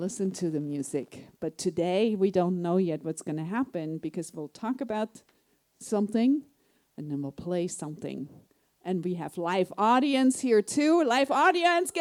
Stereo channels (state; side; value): identical; both; correlation 1.00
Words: to the music. But today, we don't know yet what's going to happen because we'll talk about something, and then we'll play something. And we have live audience here too. Live audience,